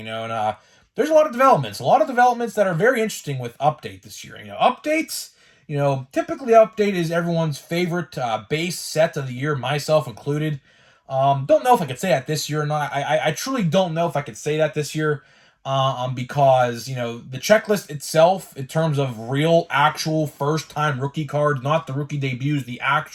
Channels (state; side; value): identical; both; correlation 1.00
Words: and there's a lot of developments that are very interesting with Update this year. Updates, typically Update is everyone's favorite base set of the year, myself included. Don't know if I could say that this year or not. I truly don't know if I could say that this year. Because, the checklist itself, in terms of real, actual, first-time rookie cards, not the rookie debuts, the